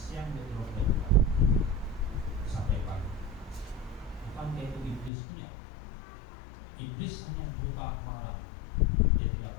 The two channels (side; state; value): right; drops out; at 5.1 s